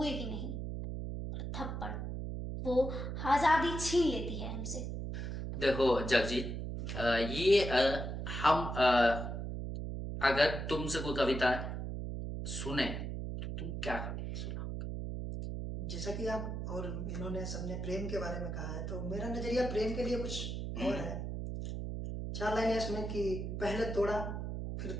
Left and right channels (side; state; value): right; noise; hum, 4 dB below the sound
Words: ही नहीं। और थप्पड़ वो आजादी छीन लेती है हमसे। देखो जगजीत, ये हम अगर तुमसे कोई कविता सुने तो तुम क्या कविता सुनाओगे? जैसा कि आप और इन्होंने सबने प्रेम के बारे में कहा है, तो मेरा नजरिया प्रेम के लिए कुछ और है। 4 लाइनें इसमें कि पहले तोड़ा फिर